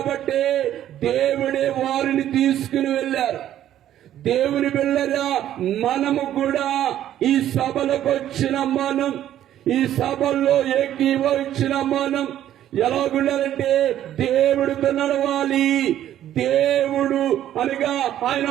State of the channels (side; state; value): left; quieter; 11.8 dB